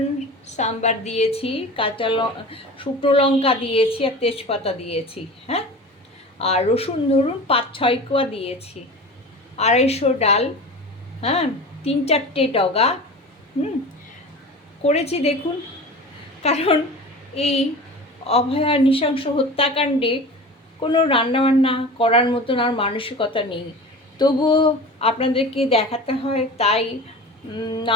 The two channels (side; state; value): both; normal; correlation 0.35